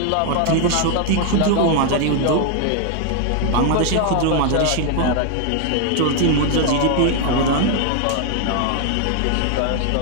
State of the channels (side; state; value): both; different; correlation 0.00